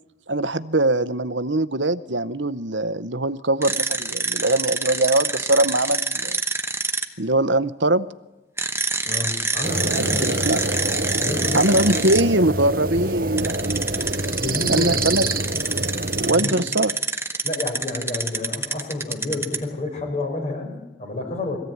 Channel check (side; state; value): both; normal; correlation -0.02